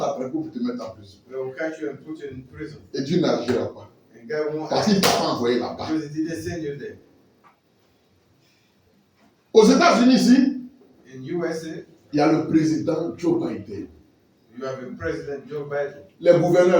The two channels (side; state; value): both; identical; correlation 1.00